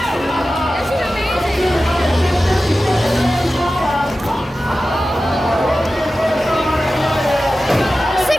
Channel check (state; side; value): normal; both; correlation 0.94